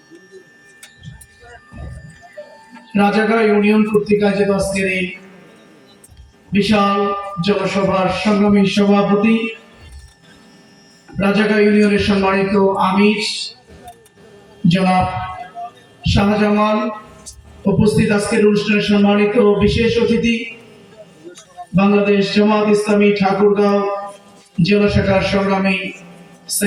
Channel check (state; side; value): identical; both; correlation 1.00